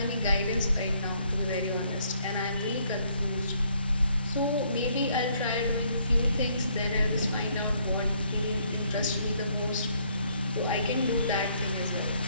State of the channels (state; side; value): inverted; both; correlation -0.68